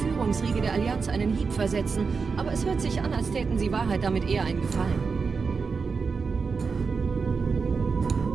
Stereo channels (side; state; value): left; quieter; 5.0 dB